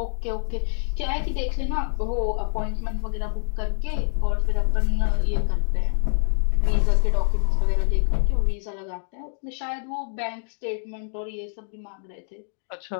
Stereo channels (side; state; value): right; silent; digital silence